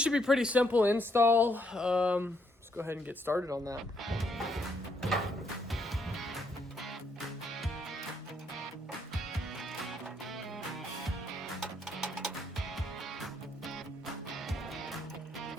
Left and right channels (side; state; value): both; normal; correlation 0.73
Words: should be pretty simple install. Let's go ahead and get started on that.